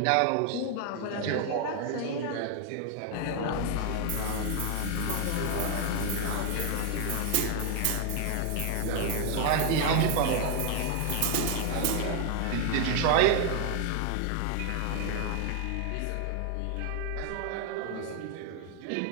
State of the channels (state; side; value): different; both; correlation 0.00